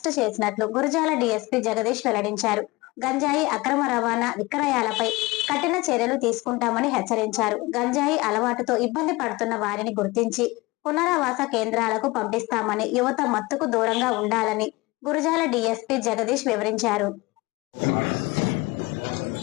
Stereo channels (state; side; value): quieter; right; 22.6 dB